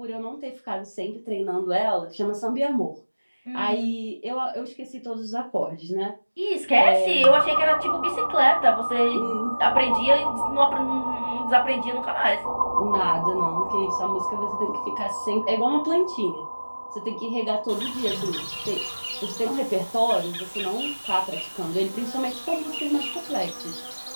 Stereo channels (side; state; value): both; inverted; correlation -1.00